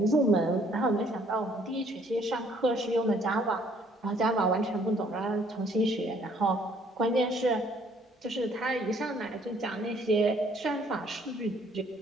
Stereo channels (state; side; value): normal; both; correlation 0.62